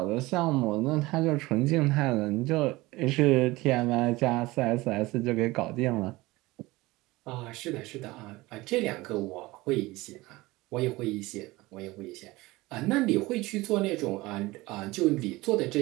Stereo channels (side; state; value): left; quieter; 20.4 dB